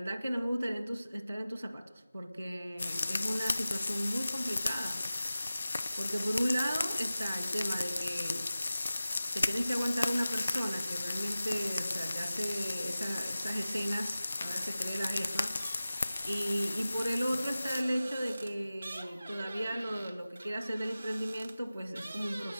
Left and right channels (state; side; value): inverted; both; correlation -0.96